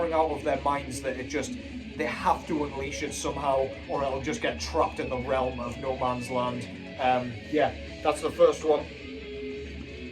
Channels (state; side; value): identical; both; correlation 1.00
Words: out of their minds that they have to unleash it somehow, or it'll just get trapped in the realm of no man's land. Yeah, that's the first one.